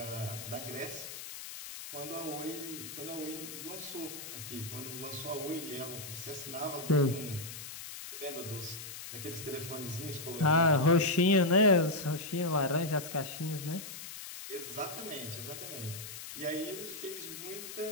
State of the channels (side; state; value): left; noise; hiss, 10 dB below the sound